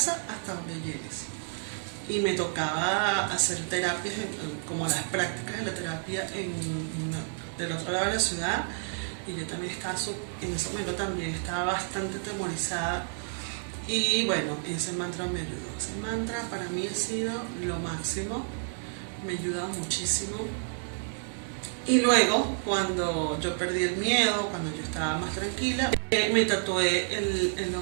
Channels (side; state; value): left; silent; digital silence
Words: hasta donde llegues. Y me tocaba hacer terapias, como las prácticas de la terapia del otro lado de la ciudad, y yo también estaba, en ese momento también estaba bastante atemorizada, y bueno, ese mantra me ayudó. Ese mantra para mí ha sido lo máximo, me ha ayudado muchísimo. Y luego, cuando yo perdí el miedo, cuando yo estaba más tranquila, me tatué el